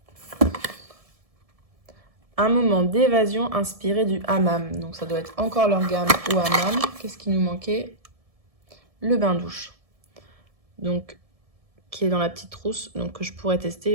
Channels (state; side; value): late; left; 1.7 ms